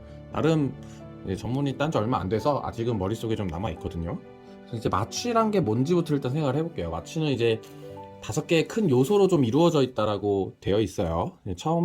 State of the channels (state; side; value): identical; both; correlation 1.00